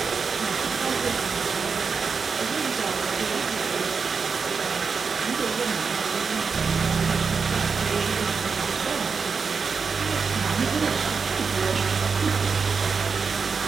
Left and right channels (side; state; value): left; quieter; 5.3 dB